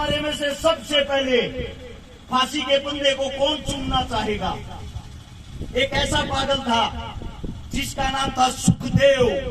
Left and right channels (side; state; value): both; identical; correlation 1.00